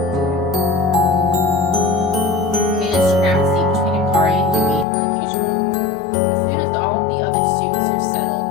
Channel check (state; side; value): drops out; right; at 4.9 s